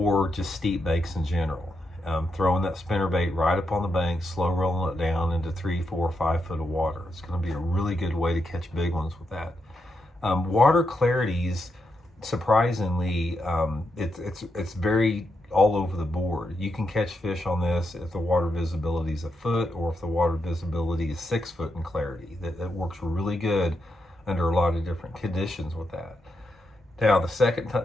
just steep banks in general. Throwing that spinnerbait right up on the bank, slow rolling it down into 3, 4, 5 foot of water. It's going to be a really good way to catch big ones with that. Water clarities, surprisingly, it's very all over the board. You can catch fish on this if the water visibility is a foot, or if the water visibility is 6 foot in clarity. That works really good under a lot of different conditions with that. Now, the second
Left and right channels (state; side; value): normal; both; correlation 0.83